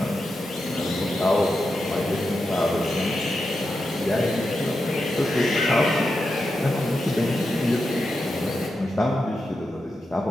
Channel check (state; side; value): normal; both; correlation 0.88